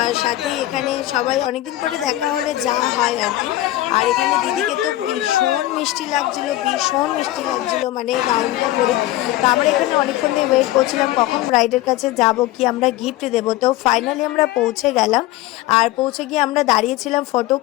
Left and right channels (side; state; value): right; quieter; 15.9 dB